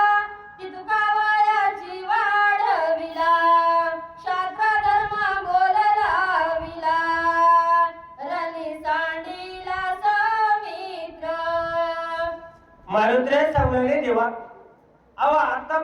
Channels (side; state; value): both; identical; correlation 1.00